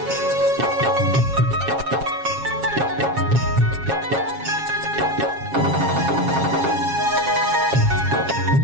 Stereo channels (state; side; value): late; left; 7.4 ms